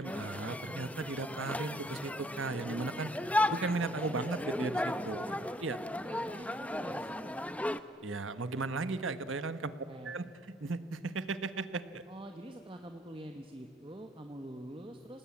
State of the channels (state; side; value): normal; both; correlation 0.63